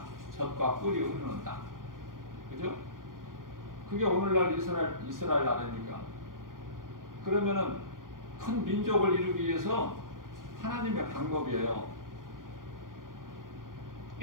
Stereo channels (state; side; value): late; left; 0.90 ms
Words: 젖과 꿀이 흐르는 땅, 그죠? 그게 오늘날 이스라엘 나라입니까? 그러면은 큰 민족을 이루기 위해서 하나님의 방법이에요.